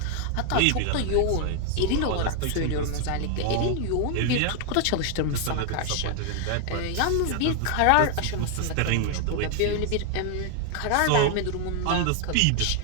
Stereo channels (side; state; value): both; different; correlation 0.00